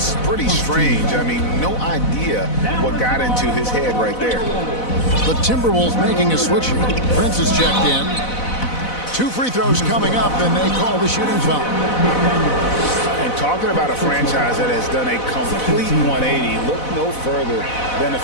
pretty strange. I mean, no idea what got into his head right there. The Timberwolves making a switch here. Prince is checked in. 2 free throws coming up, and they call the shooting foul. And talking about a franchise that has done a complete 180, look no further than the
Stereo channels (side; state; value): right; late; 4.0 ms